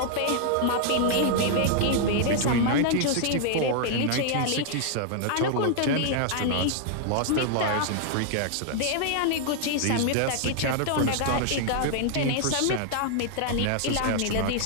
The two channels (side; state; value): both; different; correlation 0.00